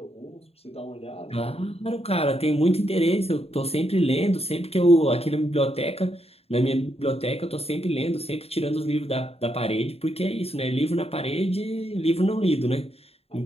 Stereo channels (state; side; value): late; right; 0.29 ms